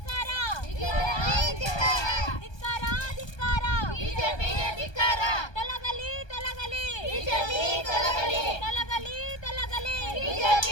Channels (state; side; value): late; right; 1.2 ms